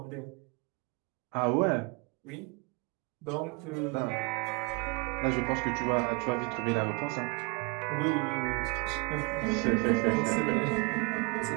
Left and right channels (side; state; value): left; quieter; 31.3 dB